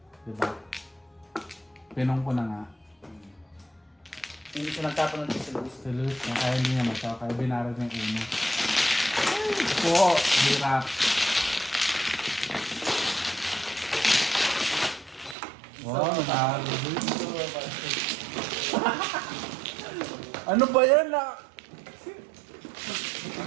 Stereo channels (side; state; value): left; drops out; at 15.4 s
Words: Diba? Pinong ko na nga. Hindi siya nagtapon ng si Luis. Si Luis na kaya hindi niya matsaw. Kaya binarag niya yung 1. Po! Hirap. Wow, natalo Luis. Ano ba yan na?